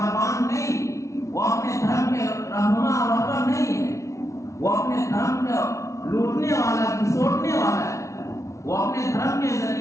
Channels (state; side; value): late; right; 0.14 ms